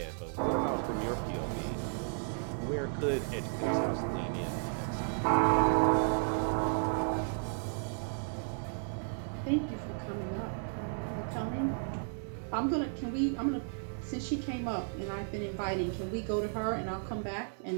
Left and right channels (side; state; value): left; silent; 55 dB below the other